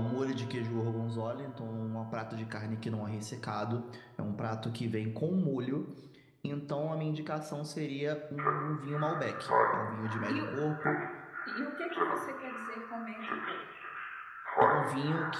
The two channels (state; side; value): identical; both; correlation 1.00